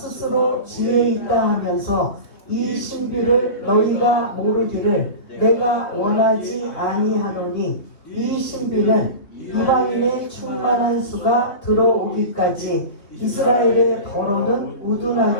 지혜 있다 하면서 이 신비를 너희가 모르기를 내가 원하지 아니하노니, 이 신비는 이방인의 충만한 수가 들어오기까지 이스라엘의 더러는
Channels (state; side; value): late; right; 3.4 ms